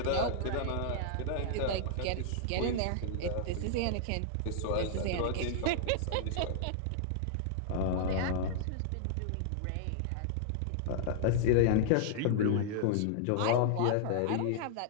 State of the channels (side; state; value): both; different; correlation -0.01